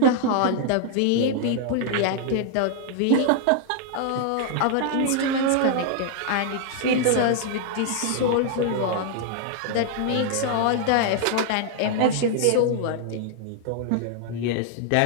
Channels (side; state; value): both; different; correlation 0.00